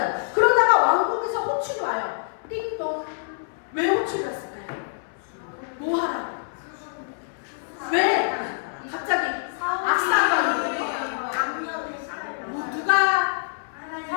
그러다가 왕국에서 호출이 와요. 띵동. 왜 호출이 왔을까요? 뭐 하라고? 왜? 갑자기 악사가 누가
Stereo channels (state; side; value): silent; right; 61 dB below the other